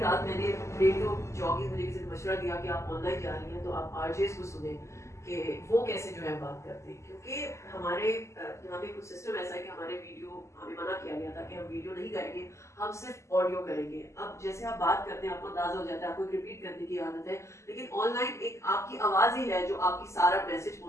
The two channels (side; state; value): right; late; 0.14 ms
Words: मैंने रेडियो जॉगिंग, मुझे किसी ने मशवरा दिया कि आप ऑनलाइन जा रही हैं तो आप आरजेस को सुने कि वो कैसे जो है बात करते हैं, क्योंकि हमारे यहाँ पे कुछ सिस्टम ऐसा है कि हमारे वीडियो, हमें मना किया गया था कि हम वीडियो नहीं करेंगे, हम सिर्फ ऑडियो करेंगे। अब जैसे आप बात करते हैं आपको अंदाजा हो जाता है, आपको रिपीट करने की आदत है, लेकिन ऑनलाइन एक आपकी आवाज़ ही है जो आपकी सारा मैसेज